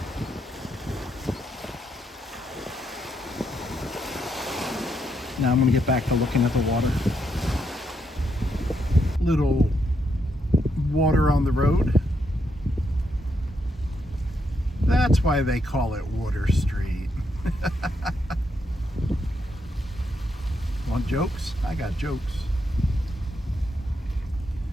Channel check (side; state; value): both; normal; correlation 0.79